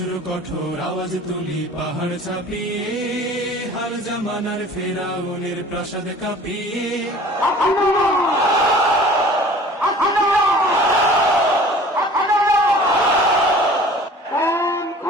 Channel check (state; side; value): normal; both; correlation 0.46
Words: কঠোর আওয়াজ তুলি পাহাড় ছাপিয়ে, হার জামানার ফেরাউনের প্রাসাদ কাঁপিয়ে।